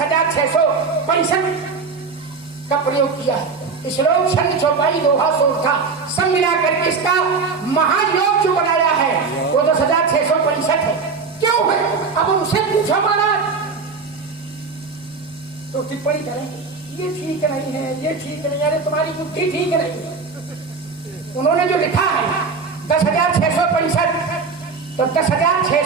का प्रयोग किया है। श्लोक छंद चौपाई दोहा सोरठा सब मिला करके इसका महायोग जो बनाया है वो 10,665 है। क्यों है? अब उनसे पूछो महाराज तो टिप्पणी करेंगे ये ठीक नहीं है, ये ठीक नहीं, अरे तुम्हारी बुद्धि ठीक नहीं है। उन्होंने जो लिखा है 10,665, तो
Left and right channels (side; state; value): left; quieter; 4.7 dB